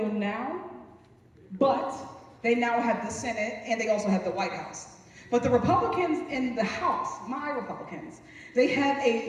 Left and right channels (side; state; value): both; identical; correlation 1.00